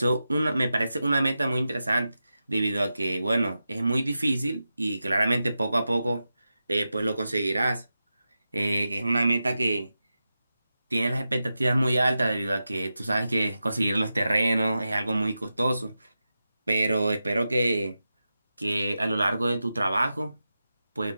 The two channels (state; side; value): inverted; both; correlation -0.91